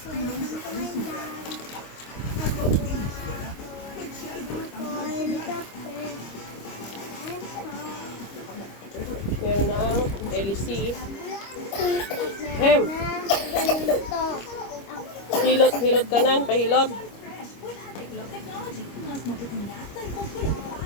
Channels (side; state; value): right; late; 25 ms